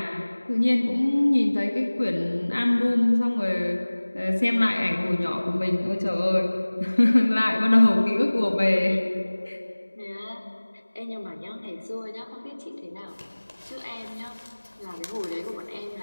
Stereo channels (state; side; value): inverted; both; correlation -1.00